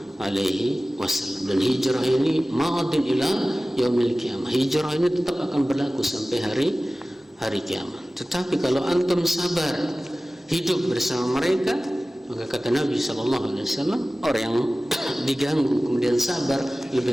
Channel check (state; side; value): normal; both; correlation 0.97